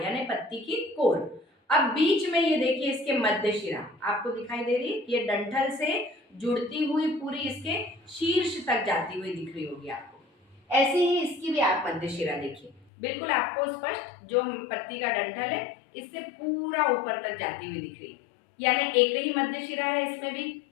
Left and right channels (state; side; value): drops out; right; at 12.9 s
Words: यानी पत्ती की कोर। अब बीच में ये देखिए इसके मध्य शिरा आपको दिखाई दे रही है, ये डंठल से जुड़ती हुई पूरी इसके शीर्ष तक जाती हुई दिख रही होगी आपको। ऐसे ही इसकी भी आप मध्य शिरा देखिए, बिल्कुल आपको स्पष्ट, जो पत्ती का डंठल है इससे पूरा ऊपर तक जाती हुई दिख रही है, यानी एक ही मध्य शिरा है इसमें भी।